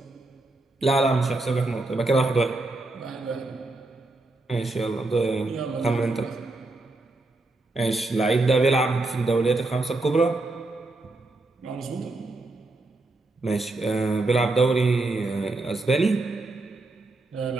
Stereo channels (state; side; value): quieter; left; 3.0 dB